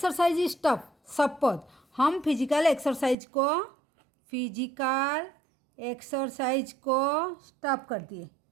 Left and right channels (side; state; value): left; drops out; at 3.2 s